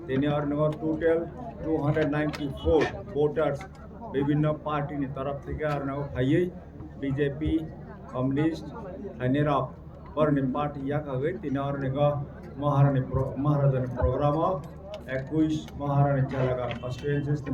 tinor nigo total 294 voters বিভিন্ন party নি তরফ থেকে আর নাও খাইয়ে BJP communist হানেরা পরনি party ইয়া খাগে তিনর নিগো মহারাজানি programme 21 মহারানী চালাগা কনস্টিটুয়েন্সিস নি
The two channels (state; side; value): identical; both; correlation 1.00